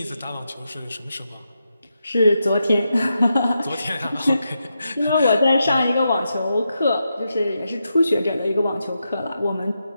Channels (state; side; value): inverted; both; correlation -0.86